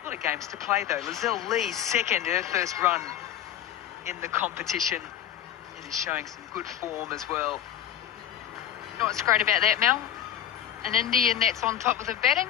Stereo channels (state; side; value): quieter; right; 10.6 dB